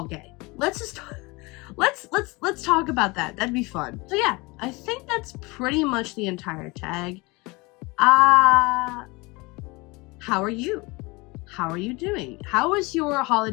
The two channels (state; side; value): quieter; right; 24.9 dB